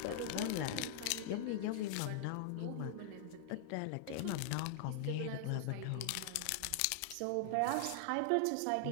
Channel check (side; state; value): both; different; correlation -0.01